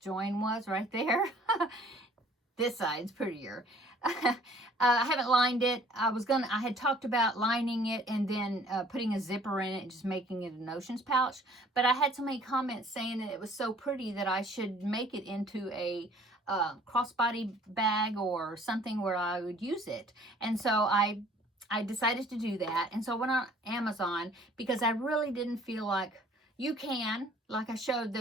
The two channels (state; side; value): normal; both; correlation 0.55